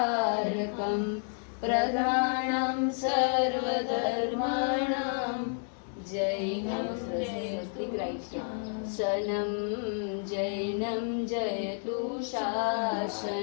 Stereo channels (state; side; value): silent; right; 57 dB below the other